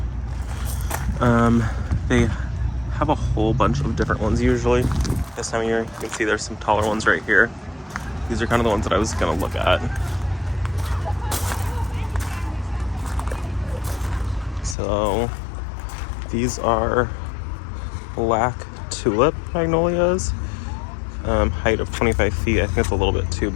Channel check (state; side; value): drops out; right; at 14.8 s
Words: They have a whole bunch of different ones usually. This time of year, you can see there's some taller ones right here. These are kind of the ones that I was gonna look at. So these are black tulip magnolias, height of 25 feet. I think it's a little bit too